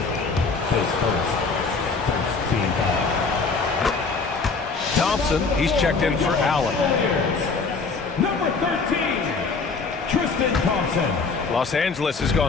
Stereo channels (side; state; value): right; quieter; 4.5 dB